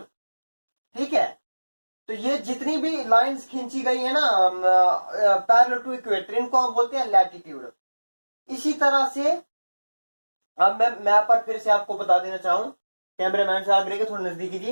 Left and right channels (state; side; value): inverted; both; correlation -1.00